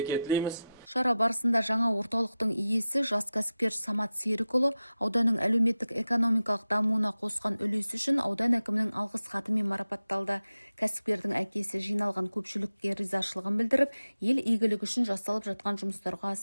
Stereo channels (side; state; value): both; inverted; correlation -0.94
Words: тілейміз. Шара барысында жаңа орталықтың иесі жас кәсіпкер Самат Серікұлы ауданның әлеуметтік экономикалық дамуына қосқан үлесі үшін аудан әкімінің алғыс хатымен марапатталды. Кәсіпкердің әкесі жиналған көпшілікке ризашылығын білдіріп, ел игілігі үшін жасалып жатқан жұмыстарға